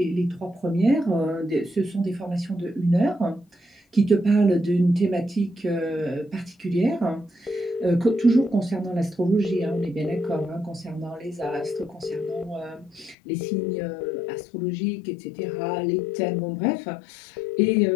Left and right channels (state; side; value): drops out; right; at 13.2 s